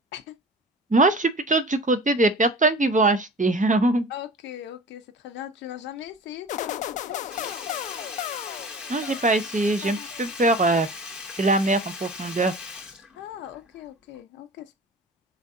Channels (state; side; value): normal; both; correlation 0.38